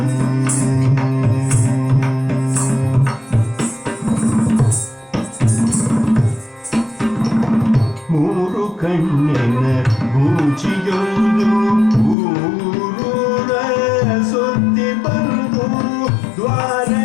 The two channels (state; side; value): drops out; right; at 12.2 s